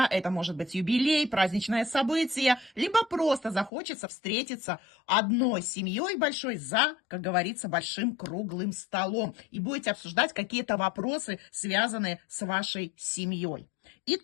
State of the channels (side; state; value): right; drops out; at 3.7 s